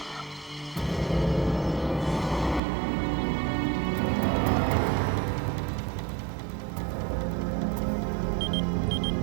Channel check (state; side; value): drops out; left; at 2.6 s